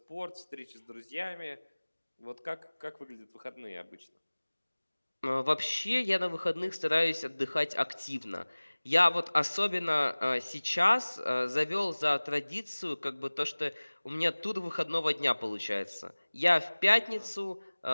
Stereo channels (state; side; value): inverted; both; correlation -1.00